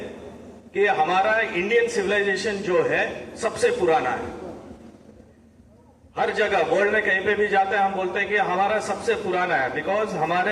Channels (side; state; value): both; identical; correlation 1.00